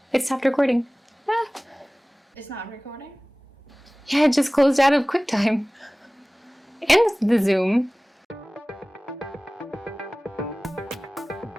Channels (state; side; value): normal; both; correlation 0.98